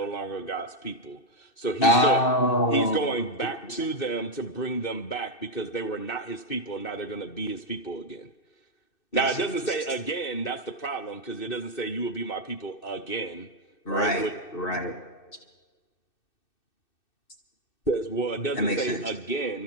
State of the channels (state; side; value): late; right; 2.6 ms